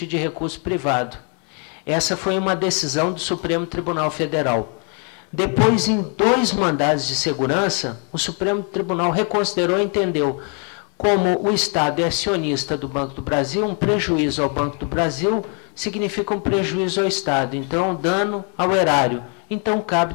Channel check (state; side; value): quieter; right; 39.0 dB